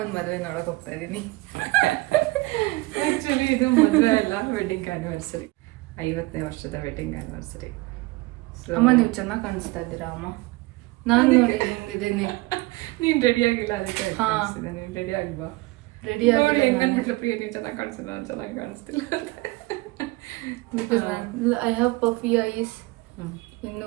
ಮದುವೆ ನೋಡೋಕೆ ಹೋಗ್ತಾ ಇದ್ದೀನಿ. ಆ್ಯಕ್ಚುಲಿ ಇದು ಮದುವೆ ಅಲ್ಲ, ವೆಡ್ಡಿಂಗ್ ಆ್ಯನಿವರ್ಸರಿ. 50ನೇ ವರ್ಷದ ವೆಡ್ಡಿಂಗ್ ಆ್ಯನಿವರ್ಸರಿ. ಅಮ್ಮ ನೀವು ಚೆನ್ನಾಗಿ ಕಾಣಿಸ್ತಾ ಇದ್ದೀರಾ ಅಮ್ಮ. ನಾನು ನೋಡಿ ಹಿಂಗಿದ್ದೀನಿ. ನೀನು ರೆಡಿ ಆಗಿಲ್ಲ, ಅದಕ್ಕೆ ನೀನು ರೆಡಿ ಆಗ್ಬಾ. ರೆಡಿ ಆಗಿ ಹೆಂಗನ್ಬಿಟ್ಲು ಪ್ರಿಯ, ನೀವು ಚೆನ್ನಾಗಿ ಕಾಣಿಸ್ತಿಲ್ಲ, ನಾನು ಚೆನ್ನಾಗಿ ಕಾಣಿಸ್ತಿಲ್ಲ. Because I have puffy eyes.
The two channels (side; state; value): left; quieter; 21.9 dB